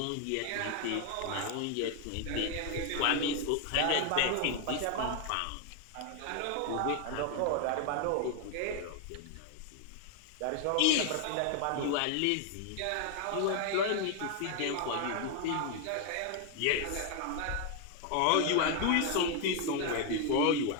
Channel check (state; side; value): different; both; correlation 0.01